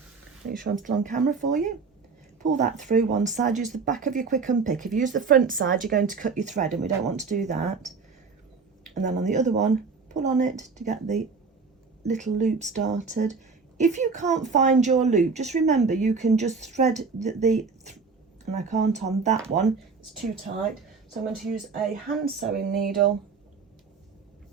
Make sure I'm still on camera for you. Pull that through one side, use the back of your quick unpick. If you use the front side, you're going to cut your thread, and we don't want to do that. And then on the other one, pull on it to get the little loop started. If you can't find your loop, just remember you can just thread and I can't on that one, it's too tight. So I'm going to use a hand sewing needle,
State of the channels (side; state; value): left; quieter; 4.8 dB